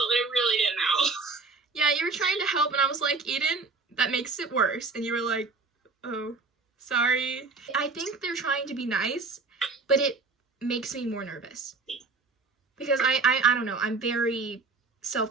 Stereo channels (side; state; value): left; quieter; 4.0 dB